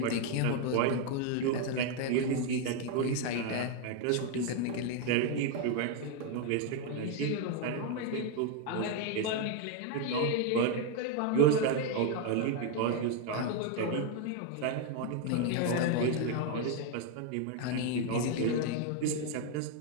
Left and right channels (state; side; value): different; both; correlation 0.01